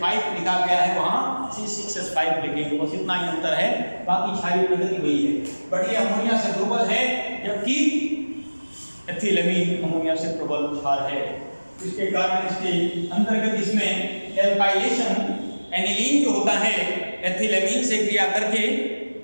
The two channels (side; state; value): both; inverted; correlation -1.00